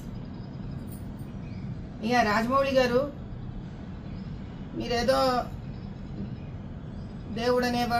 ఇక రాజమౌళి గారు, మీరేదో దేవుడు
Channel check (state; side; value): identical; both; correlation 1.00